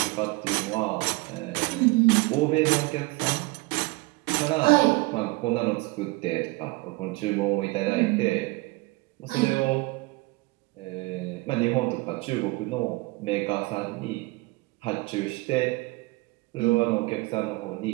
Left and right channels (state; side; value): quieter; left; 23.6 dB